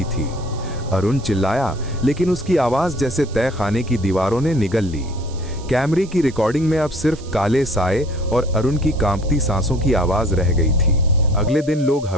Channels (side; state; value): right; noise; hiss, 21 dB below the sound